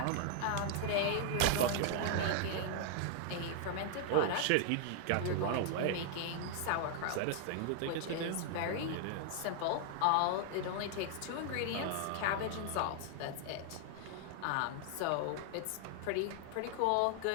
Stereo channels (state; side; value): different; both; correlation 0.00